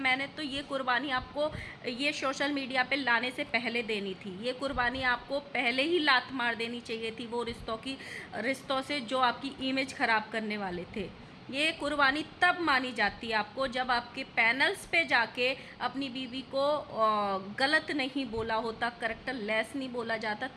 तो ये कुर्बानी आपको ये सोशल मीडिया पे लाने से पहले देनी थी। ये कुर्बानी आपको पहले ही लात मार देनी चाहिए थी वो रिश्तों से जो आपकी इमेज ख़राब करने वाले थे। ये कुर्बानी तब मानी जाती है आपको जब आपके पैनल्स पे जाके अपनी बीवी को गलत नहीं बोला होता, करेक्टर लेस नहीं बोला जाता,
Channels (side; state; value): both; identical; correlation 1.00